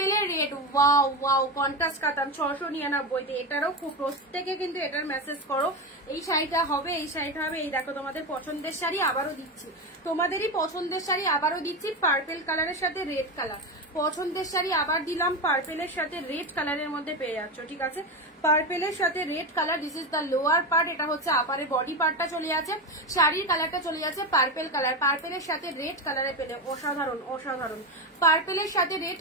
রেড, ওয়াও ওয়াও, কন্ট্রাস্ট কাতান 699। এটারও খুব প্রত্যেকে কিন্তু এটার মেসেজ করো, এই শাড়িটা হবে, এই শাড়িটা হবে। এই দেখো তোমাদের পছন্দের শাড়ি আবারও দিচ্ছি, তোমাদেরই পছন্দের শাড়ি আবারও দিচ্ছি, পার্পেল কালারের সাথে রেড কালার, পছন্দের শাড়ি আবার দিলাম, পার্পেলের সাথে রেড কালারের মধ্যে পেয়ে যাচ্ছ, ঠিক আছে। পার্পেলের সাথে red colour, this is the lower part, এটা হচ্ছে আপারে বডি পার্টটা চলে যাচ্ছে, শাড়ির কালারটা চলে যাচ্ছে পার্পেল কালার, পার্পেলের সাথে রেড কালারে পেলে অসাধারণ অসাধারণ। পার্পেলের সাথে রেড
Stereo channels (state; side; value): normal; both; correlation 0.17